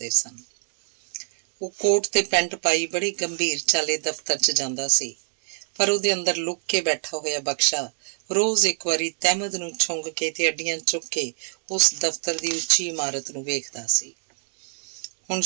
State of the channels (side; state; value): left; silent; 62 dB below the other